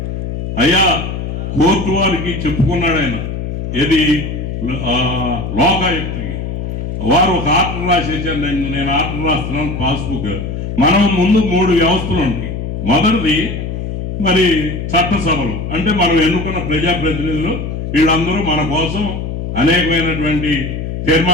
అయ్యా కోర్టు వారికి చెప్పుకున్నాడు ఆయన, ఏది లోకాయుక్తికి. వారు ఒక ఆర్డర్ రాసేసారు, నేను ఆర్డర్ రాస్తున్నాను పాస్బుక్. మనం ముందు 3 వ్యవస్థలు ఉంటాయి. మొదటిది మరి చట్టసభలు, అంటే మనం ఎన్నుకున్న ప్రజాప్రతినిధులు, వీళ్ళందరూ మన కోసం అనేకమైనటువంటి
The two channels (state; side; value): noise; left; hum, 5 dB below the sound